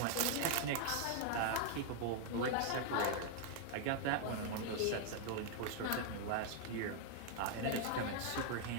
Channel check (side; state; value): both; different; correlation 0.00